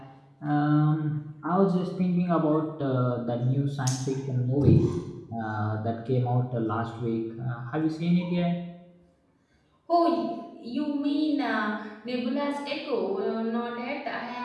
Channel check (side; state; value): both; identical; correlation 1.00